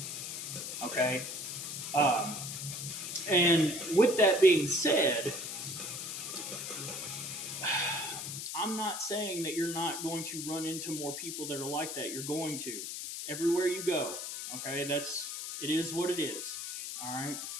Okay? And with that being said, I'm not saying that you're not going to run into more people that are like that. You're going to. Everywhere you go. Okay? It is what it is. All right?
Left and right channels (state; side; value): noise; left; hiss, 6 dB below the sound